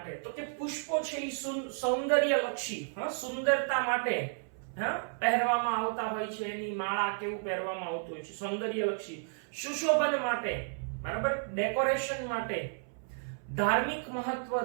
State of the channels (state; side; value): silent; left; 56 dB below the other